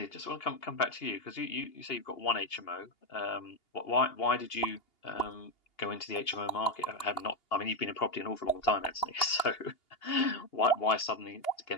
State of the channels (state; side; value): late; right; 2.8 ms